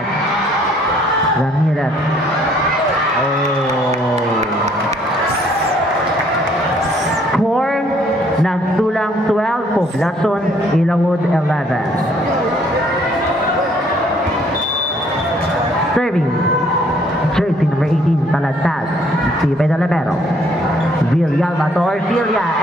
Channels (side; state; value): both; normal; correlation 0.63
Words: Ramirez. Score nagsulang 12. Poblacion Ilawod 11. Serving jersey number 18. Taladtad. Steven Olivero. Villalba to Orfilia,